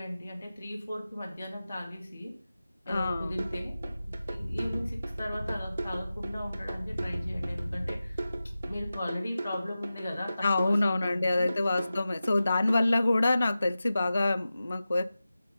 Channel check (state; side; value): inverted; both; correlation -0.94